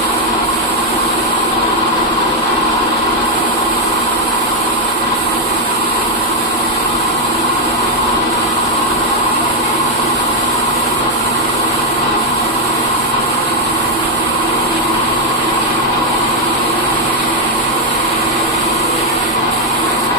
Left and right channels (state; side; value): normal; both; correlation 0.02